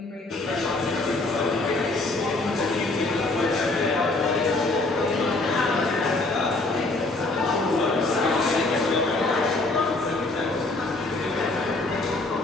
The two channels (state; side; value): quieter; right; 3.1 dB